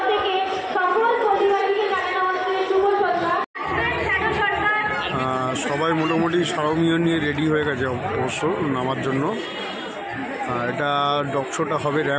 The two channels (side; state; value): both; identical; correlation 1.00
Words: থেকে সকল পল্লীবাসীকে জানানো হচ্ছে শুভ সন্ধ্যা। সবাই মোটামুটি সারমীয় নিয়ে রেডি হয়ে গেছে অবশ্য নামার জন্য। এটা ডগ শোটা হবে